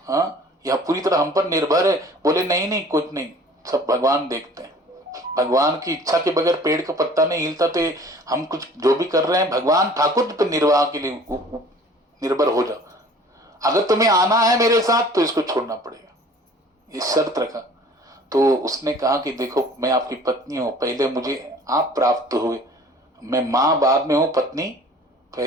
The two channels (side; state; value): both; normal; correlation 0.49